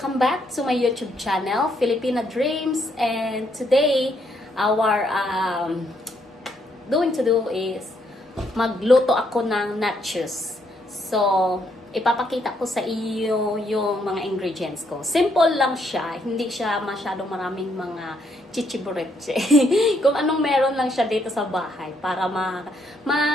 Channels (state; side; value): normal; both; correlation 0.73